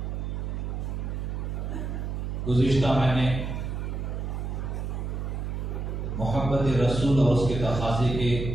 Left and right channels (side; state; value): right; noise; hum, 3 dB below the sound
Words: گزشتہ میں نے محبت رسول اور اس کے تقاضے کے